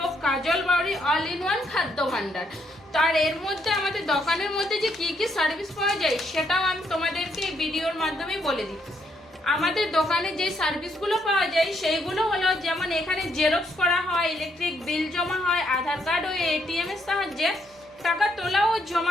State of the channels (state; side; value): normal; both; correlation 0.74